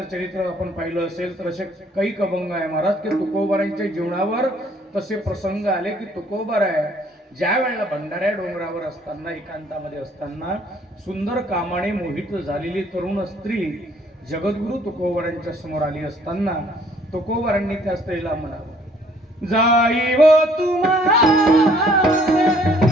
चरित्र आपण पाहिलं असेल तर असे काही अभंग आहे महाराज की तुकोबारांच्या जीवनावर तसे प्रसंग आले की तुकोबाराय ज्या वेळेला भंडाऱ्या डोंगरावर असताना एकांतामध्ये असताना सुंदर कामाने मोहित झालेली तरुण स्त्री जगद्गुरु तुकोबारांच्या समोर आली असताना तुकोबारांनी त्या स्त्रीला म्हणावं, जाई व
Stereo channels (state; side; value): normal; both; correlation 0.61